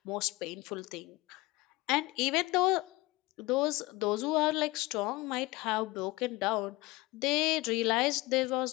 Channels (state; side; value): quieter; right; 21.6 dB